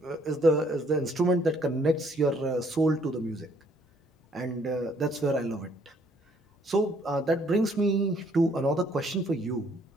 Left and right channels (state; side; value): normal; both; correlation 0.65